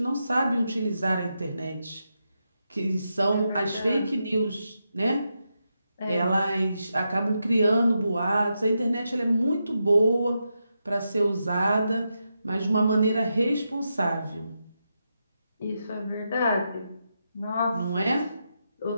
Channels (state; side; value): inverted; both; correlation -0.86